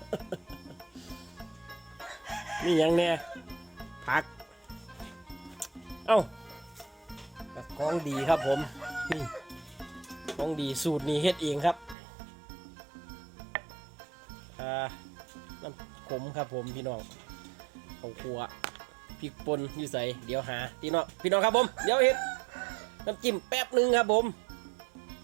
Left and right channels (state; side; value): drops out; left; at 12.0 s